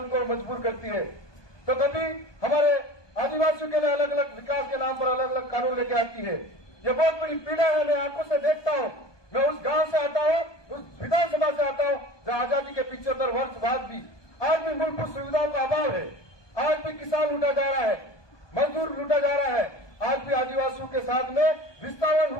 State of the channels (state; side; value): late; right; 1.2 ms